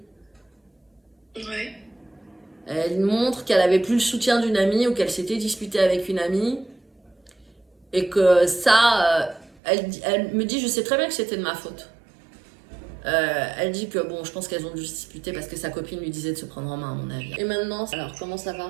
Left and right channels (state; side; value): drops out; left; at 9.6 s